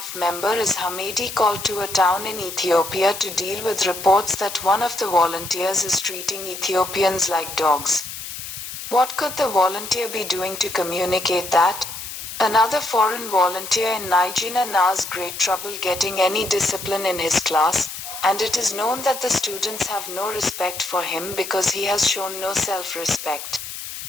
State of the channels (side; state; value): left; noise; hiss, 9 dB below the sound